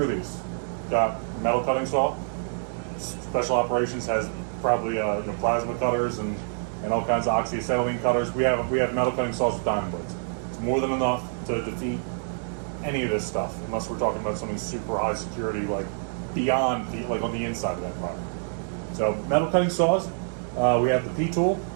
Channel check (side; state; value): left; silent; digital silence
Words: these. Got metal cutting saw. Special operations has probably plasma cutters and all kinds of oxyacetylene cutters. We have metal cutting saws with diamond blades. It's more than enough to defeat any of this stuff, unless we're talking about something super high security, like beyond like on the inside of that environment. So metal cutting saws. We have the P-tool.